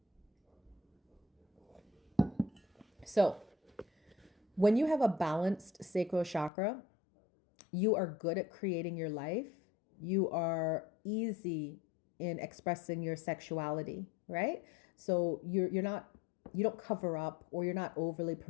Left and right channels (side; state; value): right; drops out; at 6.5 s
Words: So, when you have a balanced sacral chakra, you are good at creating your life. You are easy in expressing your sexuality, right? So you're not, you don't cover up, or you're not overly